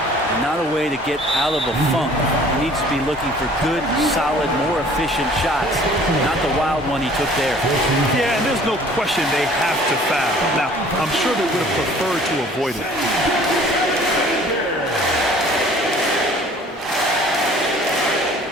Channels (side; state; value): both; normal; correlation 0.52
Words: Not a way to get out of a funk. He needs to be looking for good, solid, more efficient shots, not the wild one he took there. Yeah, and there's no question they have to foul. Now, I'm sure they would have preferred to avoid it.